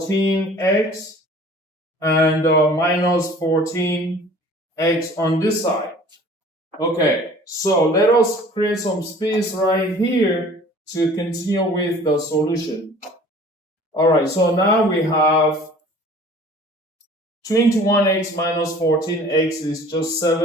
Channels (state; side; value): normal; both; correlation 0.48